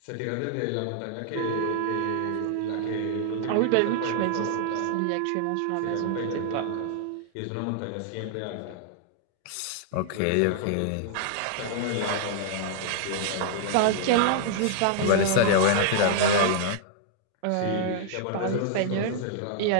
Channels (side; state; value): both; different; correlation -0.01